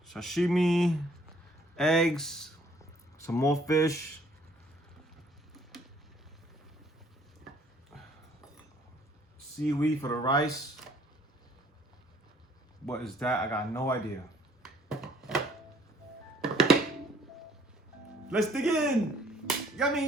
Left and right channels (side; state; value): both; normal; correlation 0.61